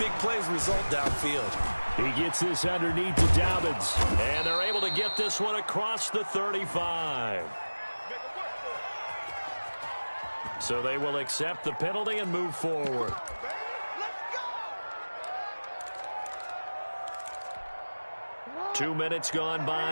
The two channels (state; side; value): inverted; both; correlation -1.00